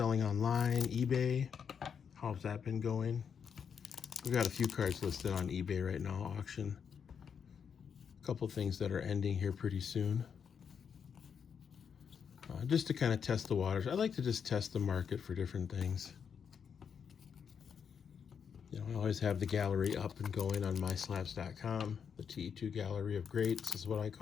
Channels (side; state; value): right; quieter; 7.0 dB